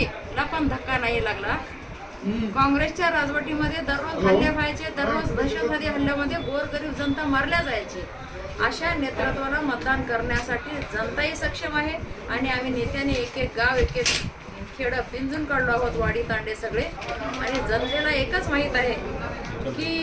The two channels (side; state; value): both; identical; correlation 1.00